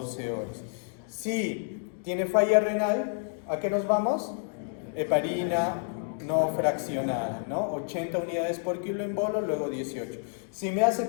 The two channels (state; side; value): silent; right; digital silence